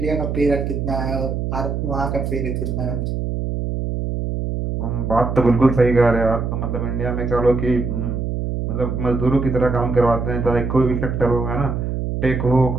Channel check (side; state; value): right; noise; hum, 2 dB below the sound